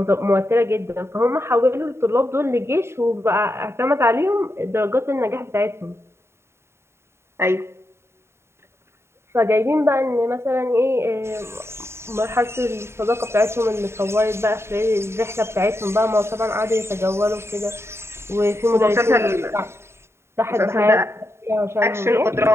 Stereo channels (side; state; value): left; late; 0.12 ms